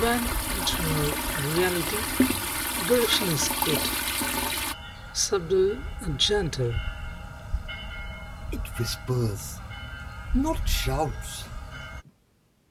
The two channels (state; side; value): identical; both; correlation 1.00